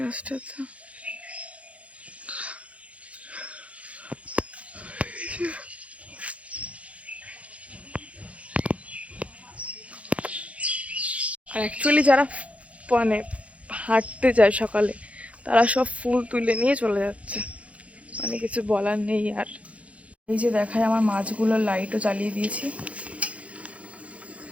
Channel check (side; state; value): left; late; 0.064 ms